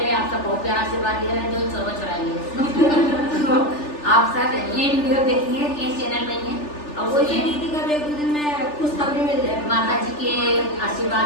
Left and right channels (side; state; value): right; late; 3.4 ms